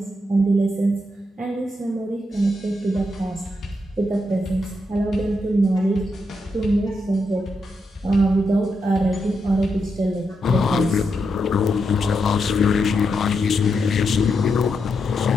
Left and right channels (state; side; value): normal; both; correlation 0.83